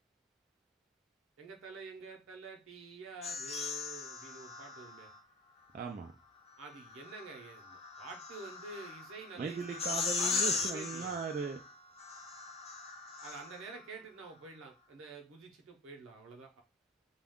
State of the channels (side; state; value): both; normal; correlation 0.38